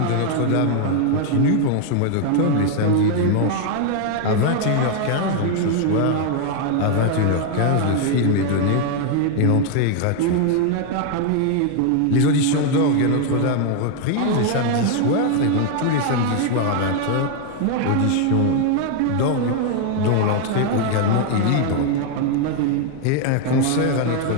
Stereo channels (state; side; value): different; both; correlation 0.00